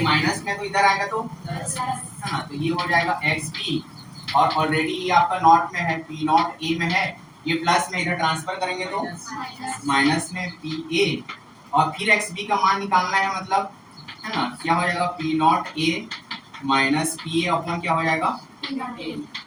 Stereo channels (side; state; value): both; identical; correlation 1.00